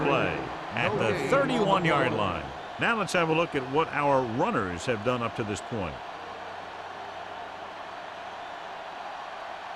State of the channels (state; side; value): identical; both; correlation 1.00